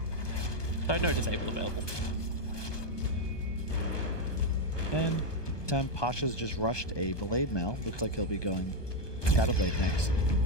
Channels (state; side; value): late; right; 1.2 ms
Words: So no Disable available. And time Pasha's just rushed a Blade Mail. Looks like he'll be going Shadowblade next.